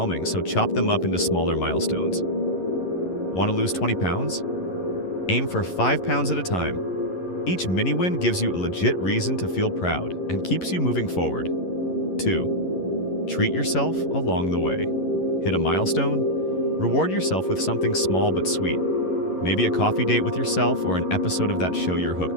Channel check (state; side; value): late; right; 11 ms